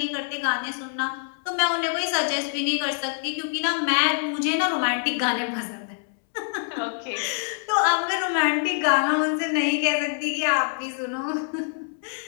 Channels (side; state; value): right; silent; 62 dB below the other